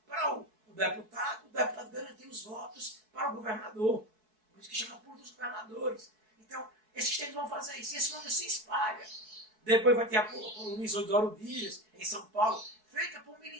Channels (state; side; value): late; left; 4.6 ms